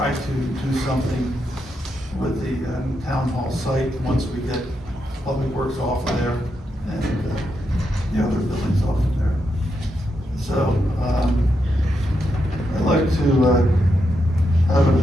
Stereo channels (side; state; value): both; normal; correlation 0.83